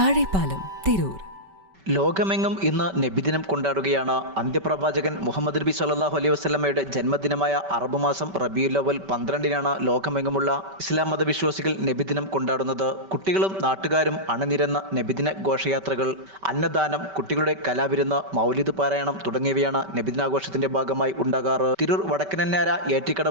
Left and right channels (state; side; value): late; left; 5.2 ms